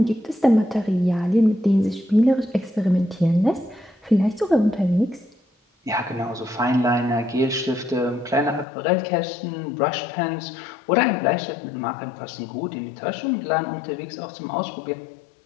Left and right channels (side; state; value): right; drops out; at 8.7 s